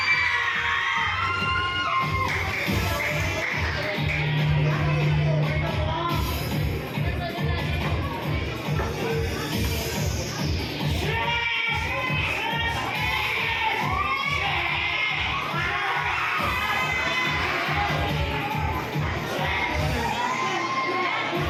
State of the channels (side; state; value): both; identical; correlation 1.00